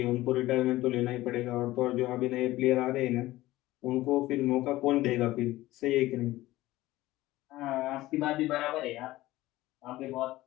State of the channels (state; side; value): quieter; right; 17.1 dB